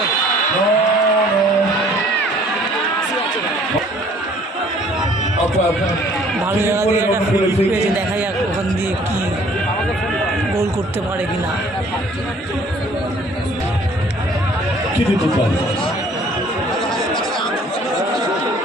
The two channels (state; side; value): normal; both; correlation 0.56